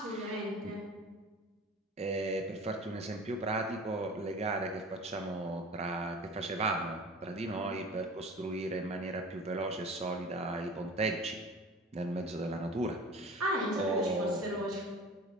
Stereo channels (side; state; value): both; normal; correlation 0.39